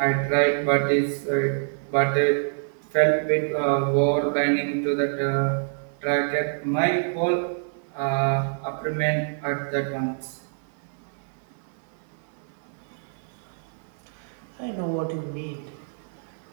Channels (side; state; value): left; silent; digital silence